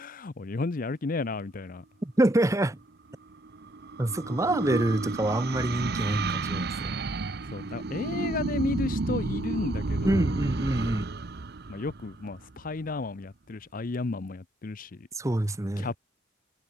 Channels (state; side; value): normal; both; correlation 0.70